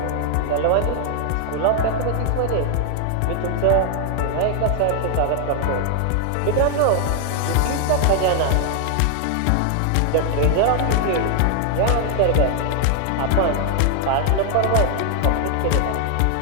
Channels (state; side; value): different; both; correlation 0.00